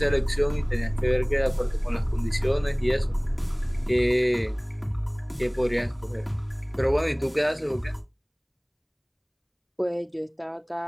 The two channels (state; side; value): identical; both; correlation 1.00